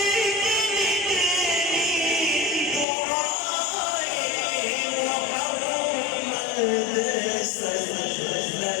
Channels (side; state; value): right; drops out; at 2.9 s